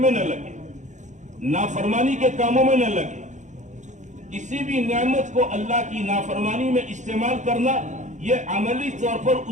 میں نہ لگے، نافرمانی کے کاموں میں نہ لگے۔ کسی بھی نعمت کو اللہ کی نافرمانی میں استعمال کرنا یہ عملی طور پر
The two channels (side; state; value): left; late; 0.35 ms